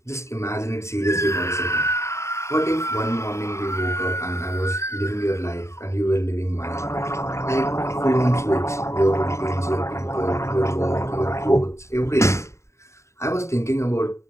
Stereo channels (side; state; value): right; late; 0.14 ms